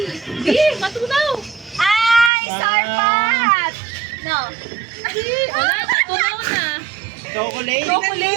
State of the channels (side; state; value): left; drops out; at 2.3 s